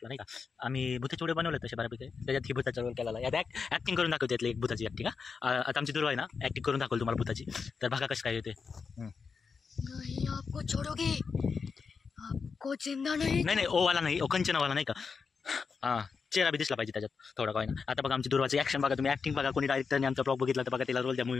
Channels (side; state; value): right; quieter; 5.4 dB